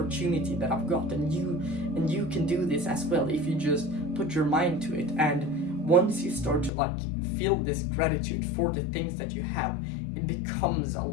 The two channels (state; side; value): drops out; right; at 6.7 s